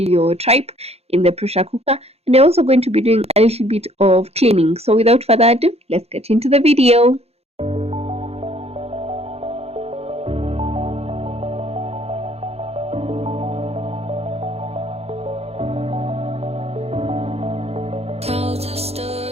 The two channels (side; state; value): left; late; 0.30 ms